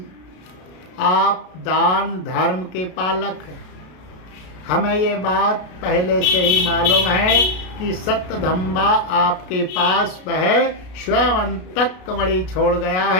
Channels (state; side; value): late; right; 33 ms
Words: आप दान धर्म के पालक हैं। हमें ये बात पहले से ही मालूम है कि सत्यधम्बा आपके पास वह स्वयंतक मणि छोड़ गया